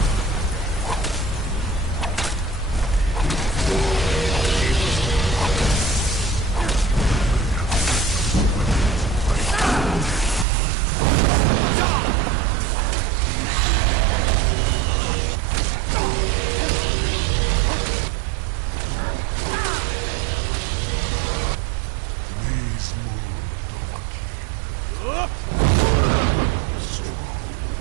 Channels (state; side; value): drops out; left; at 10.5 s